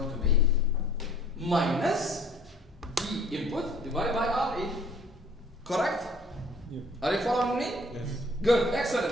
to be minus V input divided by RE. Correct? Yeah. Are you following me? Yes. Good,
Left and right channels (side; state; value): both; normal; correlation 0.54